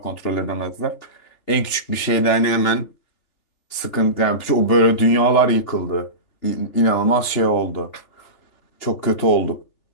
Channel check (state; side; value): late; right; 3.4 ms